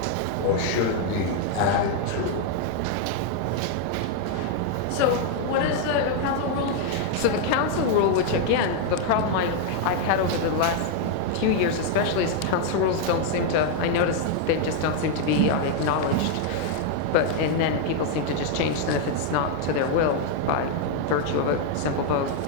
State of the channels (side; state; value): both; different; correlation 0.00